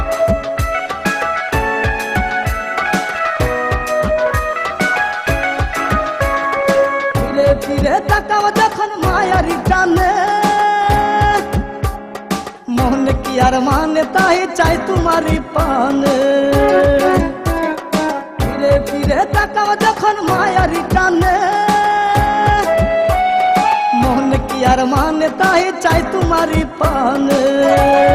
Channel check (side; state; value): both; identical; correlation 1.00